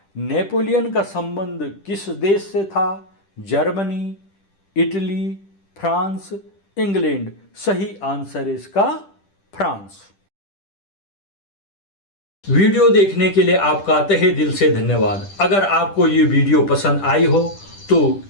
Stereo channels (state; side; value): late; right; 10 ms